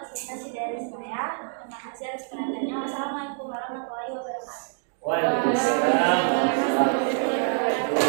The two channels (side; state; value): left; silent; 61 dB below the other